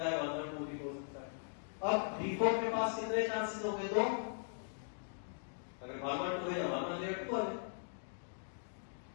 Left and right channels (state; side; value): silent; right; digital silence